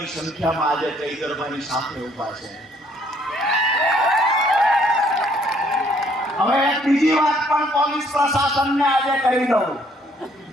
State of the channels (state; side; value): normal; both; correlation 0.64